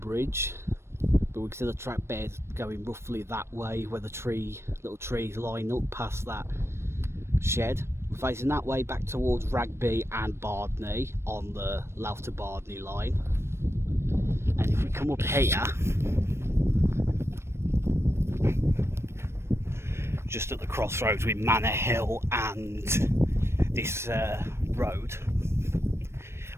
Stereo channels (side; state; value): left; late; 0.13 ms